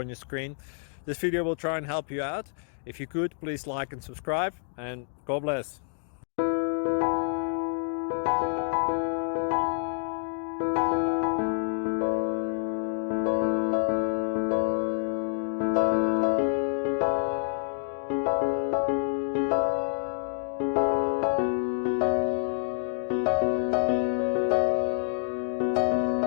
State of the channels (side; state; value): right; silent; digital silence